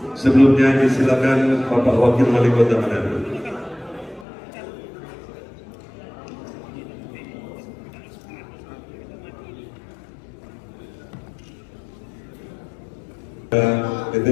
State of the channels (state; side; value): drops out; right; at 4.2 s